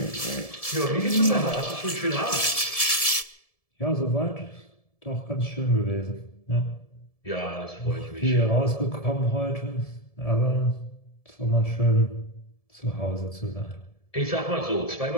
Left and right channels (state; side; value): late; right; 1.7 ms